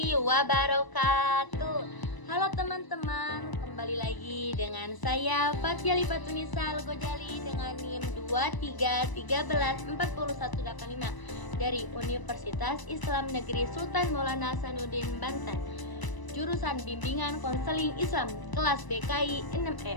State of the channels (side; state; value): right; late; 1.0 ms